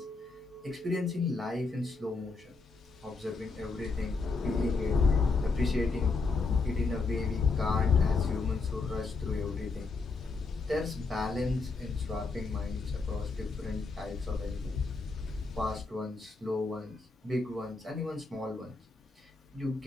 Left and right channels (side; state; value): right; quieter; 4.0 dB